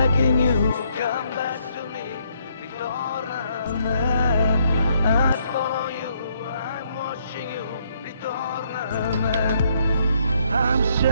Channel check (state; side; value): inverted; both; correlation -0.70